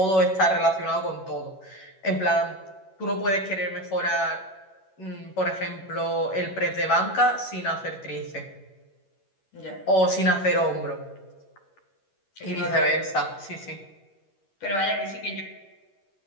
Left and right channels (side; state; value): right; late; 11 ms